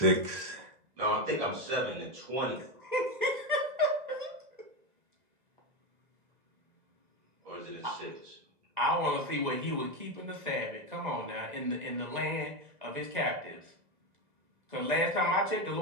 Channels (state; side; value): late; left; 2.0 ms